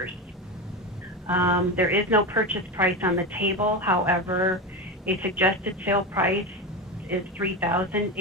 There is no purchase price on the table. However, a suggested sale price is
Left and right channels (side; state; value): both; normal; correlation 0.19